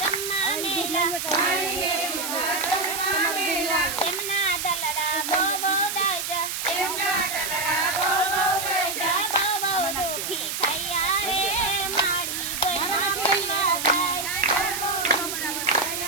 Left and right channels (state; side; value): noise; right; hiss, 3 dB below the sound